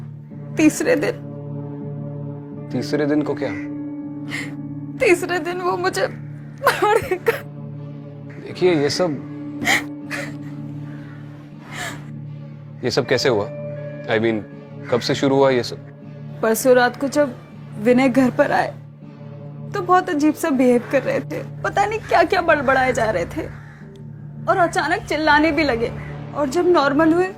तीसरे दिन को क्या? तीसरे दिन वो मुझे मारेगा। देखिए, ये सब कैसे हुआ? I mean, कब से शुरू हुआ ये सब? परसों रात को जब विनय घर पर आए तो बहुत अजीब सा बिहेव कर रहे थे। पता नहीं क्या क्या बड़बड़ाए जा रहे थे और अचानक चिल्लाने भी लगे। और जब नॉर्मल हुए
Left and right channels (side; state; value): both; identical; correlation 1.00